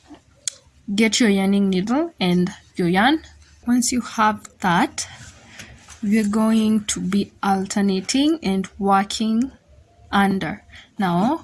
get your yarning needle and your yarn. Once you have that, we're going to be alternating and working under.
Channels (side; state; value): both; identical; correlation 1.00